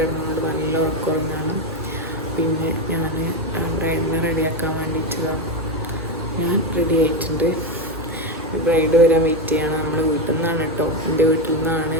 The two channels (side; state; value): both; normal; correlation 0.11